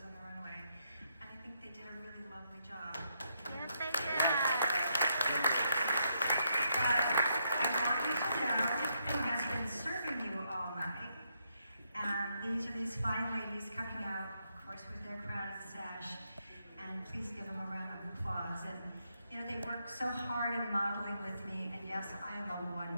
on the Runway. And I think they did a really lovely job. Yes, they did. But I want you to know who has been serving you all night. And these are these fine ladies coming out, of course, with their crown and sash. And please give them a round of applause. And you know, they work so hard in modeling with me, and yes, I am a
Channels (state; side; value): inverted; both; correlation -0.78